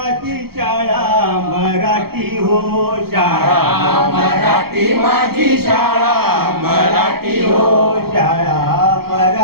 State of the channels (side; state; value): left; late; 0.95 ms